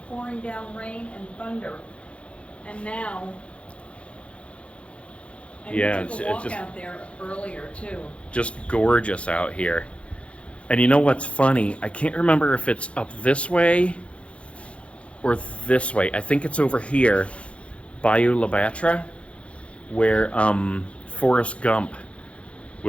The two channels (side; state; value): right; late; 0.061 ms